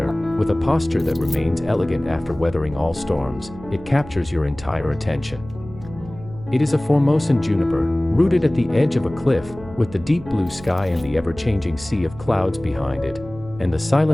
with a posture that remains elegant after weathering all storms, it captures your entire attention. It is a Formosan juniper, rooted at the edge of a cliff, with the deep blue sky and the ever-changing sea of clouds behind it, and the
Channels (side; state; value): right; noise; hum, 17 dB below the sound